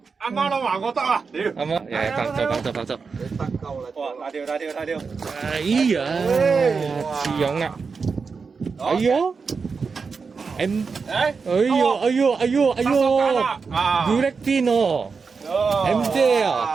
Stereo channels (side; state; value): left; quieter; 5.1 dB